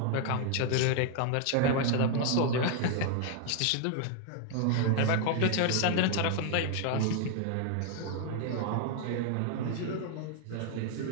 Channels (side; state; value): both; different; correlation 0.00